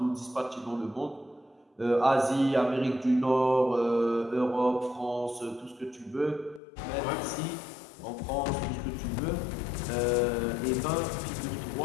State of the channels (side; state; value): right; drops out; at 6.6 s